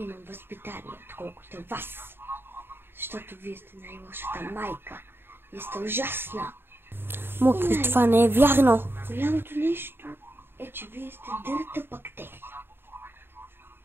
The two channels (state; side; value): late; left; 0.11 ms